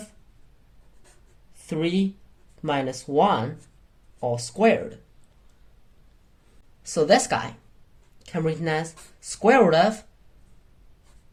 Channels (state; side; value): identical; both; correlation 1.00